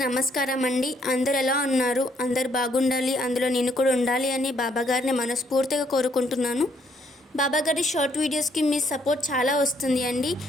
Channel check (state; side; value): normal; both; correlation 0.69